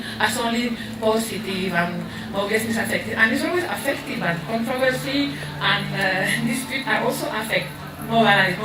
as only positive and obviously it's affected. And it's always affected, but controversy and dispute are also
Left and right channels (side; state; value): both; identical; correlation 1.00